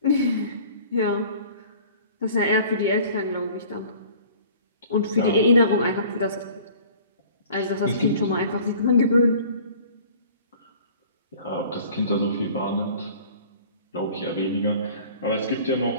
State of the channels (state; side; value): inverted; both; correlation -0.48